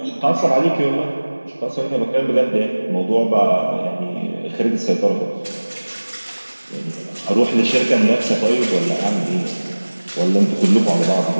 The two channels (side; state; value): both; inverted; correlation -1.00